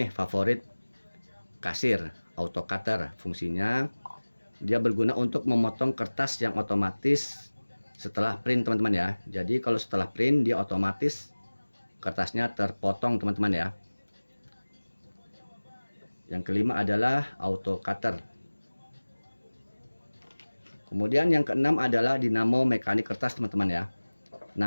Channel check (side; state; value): both; inverted; correlation -1.00